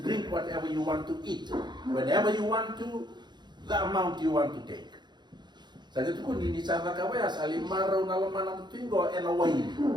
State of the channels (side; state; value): left; late; 0.21 ms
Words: drink whatever you want to eat. Whenever you want to, the amount you want to take. Sa itu kun ini sana kawaya saling maraw na laman ang tuingo and away.